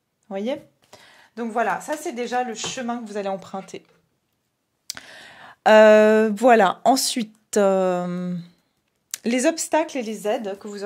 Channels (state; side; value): identical; both; correlation 1.00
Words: voyez ? Donc voilà, ça c'est déjà le chemin que vous allez emprunter. Voilà, ensuite, les obstacles et les aides que vous